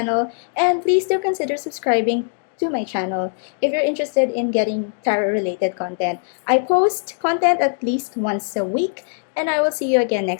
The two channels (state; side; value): silent; right; digital silence